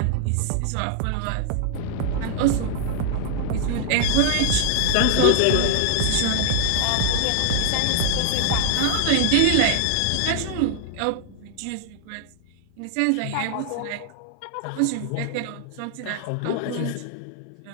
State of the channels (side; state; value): both; different; correlation 0.00